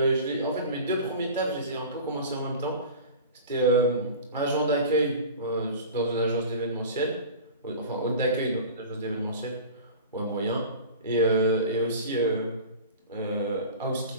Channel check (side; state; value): both; inverted; correlation -0.37